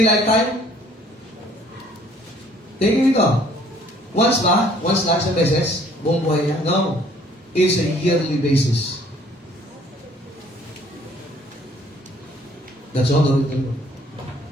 lifetime? Tingin ito. Once ba? Once lang sa beses? Buong buhay niya? No. It's a yearly basis. That's all the Lord.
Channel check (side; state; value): both; normal; correlation 0.58